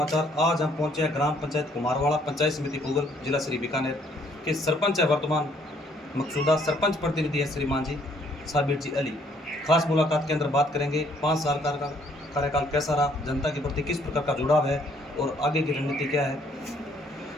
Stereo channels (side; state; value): both; normal; correlation 0.65